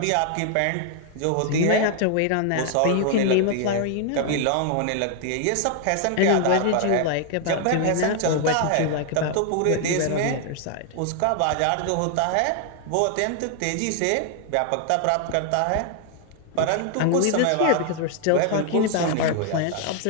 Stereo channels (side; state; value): both; different; correlation 0.00